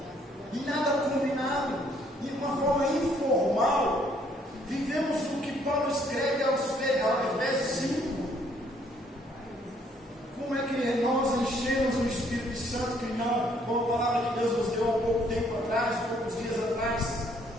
E nada combinado, de uma forma informal. Vivemos o que Paulo escreve aos Efésios 5. Como é que nós enchemos o Espírito Santo, que não, com a palavra que Deus nos deu há pouco tempo atrás, poucos dias atrás,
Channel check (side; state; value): both; normal; correlation 0.66